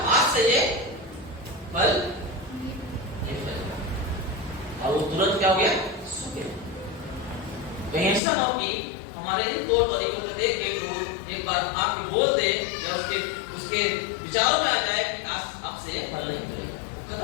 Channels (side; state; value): right; drops out; at 8.2 s